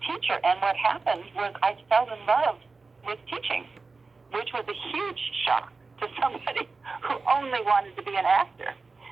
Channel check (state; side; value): quieter; left; 4.1 dB